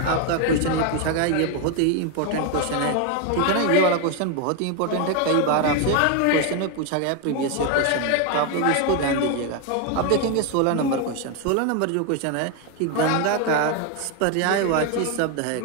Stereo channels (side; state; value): both; different; correlation 0.01